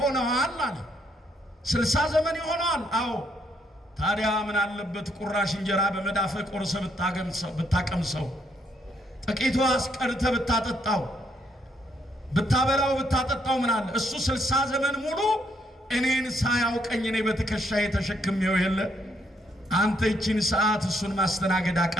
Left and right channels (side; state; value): both; normal; correlation 0.72